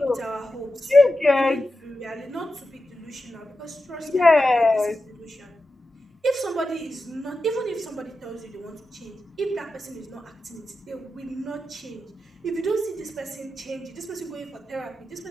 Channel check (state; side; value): normal; both; correlation 0.91